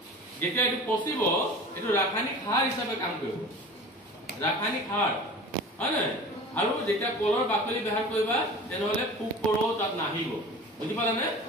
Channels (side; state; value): both; normal; correlation 0.39